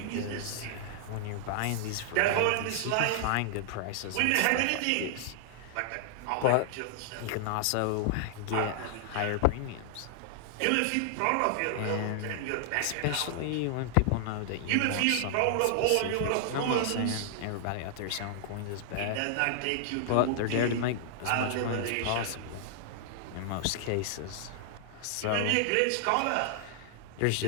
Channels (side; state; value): both; different; correlation -0.01